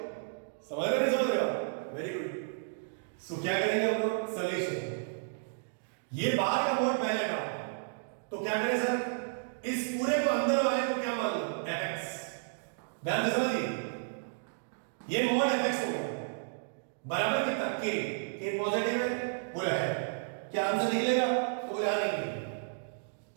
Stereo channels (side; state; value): left; silent; digital silence